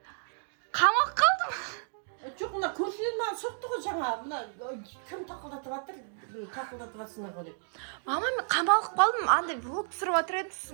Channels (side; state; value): left; silent; digital silence